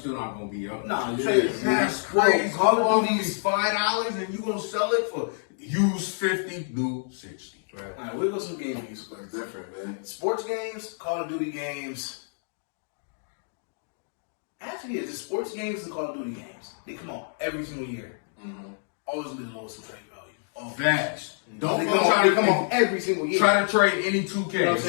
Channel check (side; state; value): right; silent; digital silence